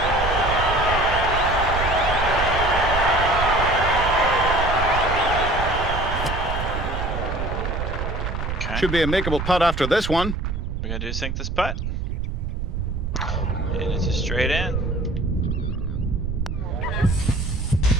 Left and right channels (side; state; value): right; noise; rumble, 3 dB below the sound